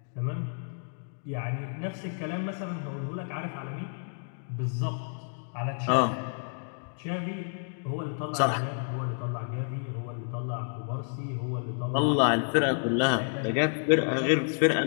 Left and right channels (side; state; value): right; silent; 58 dB below the other